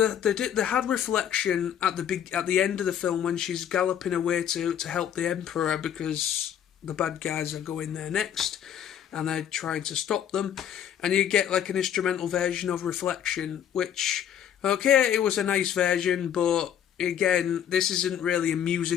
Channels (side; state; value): right; quieter; 9.5 dB